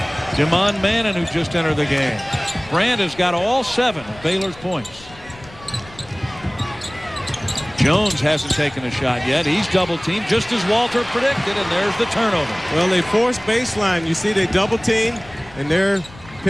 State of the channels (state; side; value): noise; left; rumble, 21 dB below the sound